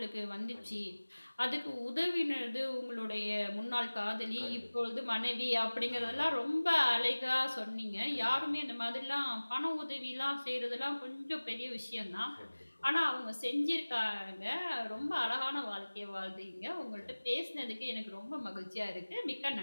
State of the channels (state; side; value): inverted; both; correlation -1.00